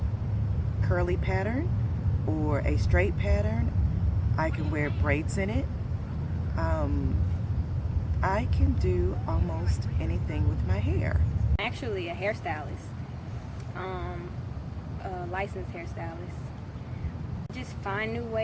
curly pattern or a straight pattern. I can wear braids in it. I can do almost anything with my hair. I'm actually a hairstylist, a licensed hairstylist. Just find new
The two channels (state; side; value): identical; both; correlation 1.00